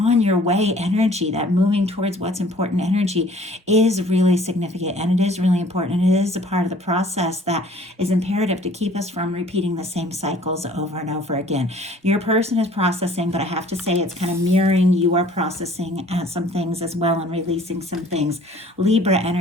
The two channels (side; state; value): both; normal; correlation 0.53